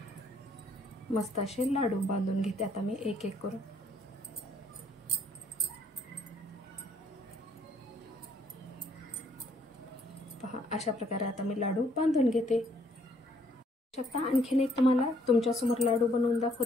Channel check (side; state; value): both; normal; correlation 0.66